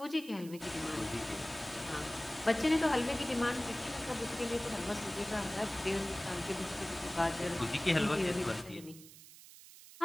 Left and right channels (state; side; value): noise; right; hiss, 18 dB below the sound